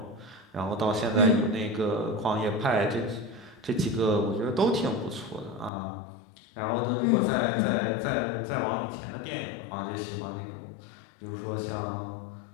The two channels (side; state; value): right; drops out; at 5.7 s